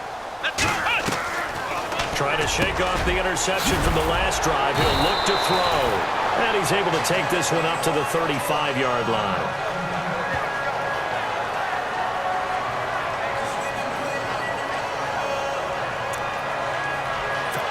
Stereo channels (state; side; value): identical; both; correlation 1.00